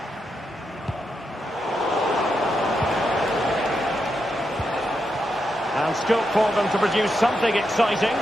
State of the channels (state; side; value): normal; both; correlation 0.84